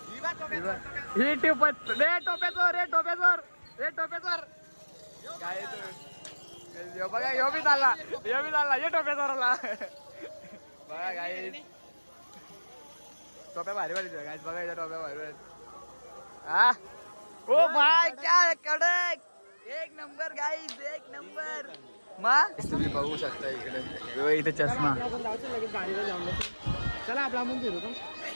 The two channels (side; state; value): both; inverted; correlation -1.00